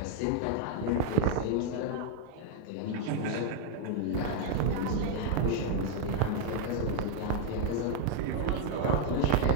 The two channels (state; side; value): different; both; correlation -0.01